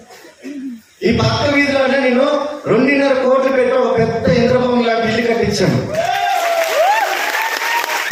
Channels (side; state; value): both; identical; correlation 1.00